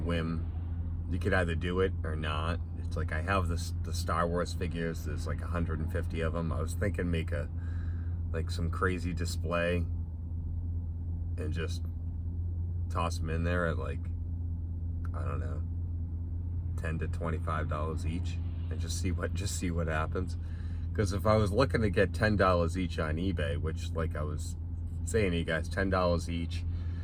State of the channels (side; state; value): both; identical; correlation 1.00